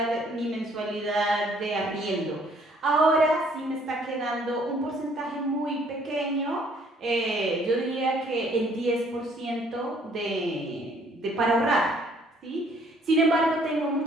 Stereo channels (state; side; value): normal; both; correlation 0.62